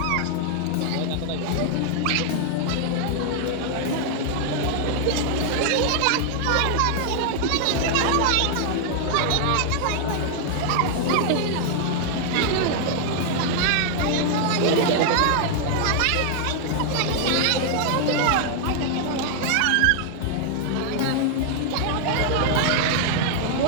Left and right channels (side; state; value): both; different; correlation 0.00